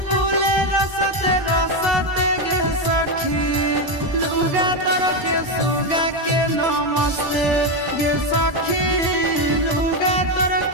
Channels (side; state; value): left; late; 1.0 ms